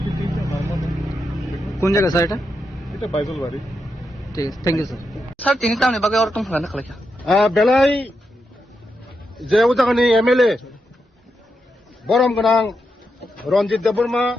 ठीक है, नॉर्मल है। কোন জায়গা স্যার এটা? এটা বাইজলবাড়ি। ঠিক আছে, থ্যাংক ইউ স্যার। স্যার তিনি তামনি বাগে আর তুমি না খালাইকা বেলাই যে উজাগানি এমএলএ বরম গোনাं रंजित देबबर्मा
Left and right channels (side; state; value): both; normal; correlation 0.85